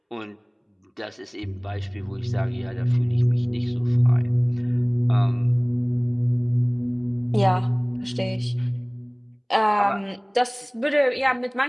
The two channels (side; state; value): both; identical; correlation 1.00